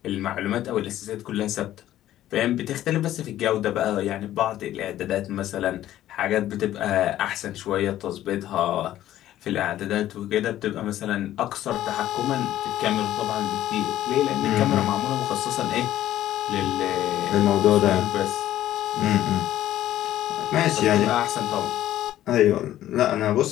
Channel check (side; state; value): right; quieter; 13.2 dB